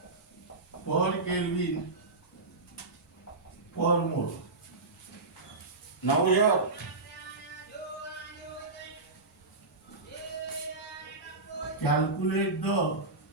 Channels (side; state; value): left; quieter; 3.4 dB